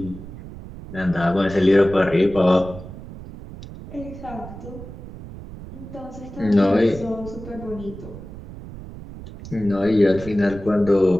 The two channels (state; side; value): noise; right; rumble, 14 dB below the sound